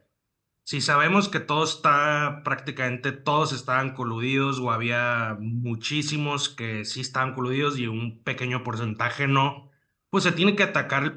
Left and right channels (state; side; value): identical; both; correlation 1.00